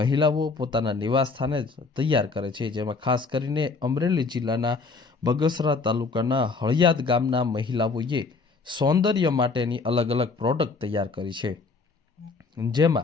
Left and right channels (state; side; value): quieter; right; 4.3 dB